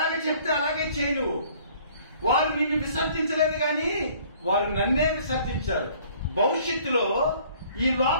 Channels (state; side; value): inverted; both; correlation -0.56